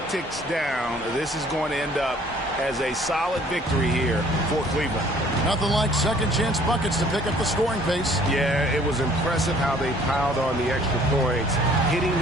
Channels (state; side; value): normal; both; correlation 0.57